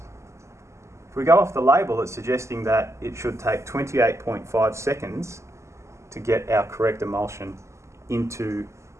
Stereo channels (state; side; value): late; left; 0.13 ms